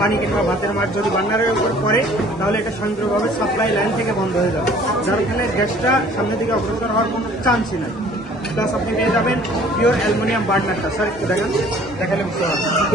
কিংবা ভাতের মাছ যদি বার্নারের উপর পড়ে তাহলে এটা স্বয়ংক্রিয়ভাবে সাপ্লাই লাইন থেকে বন্ধ হয়ে যাবে, যার ফলে গ্যাসটা সামনের দিকে অগ্রসর হওয়ার কোনো চান্সই নাই। প্লাস আপনি পেয়ে যাবেন পিওর অ্যালুমিনিয়াম বার্নারটা, স্যার একটু দেখালে বুঝতে পারবেন,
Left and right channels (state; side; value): normal; both; correlation 0.53